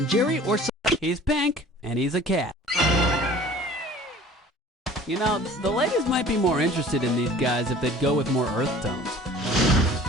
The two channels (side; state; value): both; normal; correlation 0.46